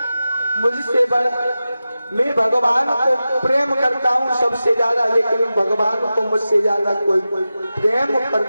मुझसे बड़ा मैं भगवान को प्रेम करता हूँ सबसे ज्यादा, लेकिन भगवान को मुझसे ज्यादा कोई प्रेम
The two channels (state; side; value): inverted; both; correlation -0.93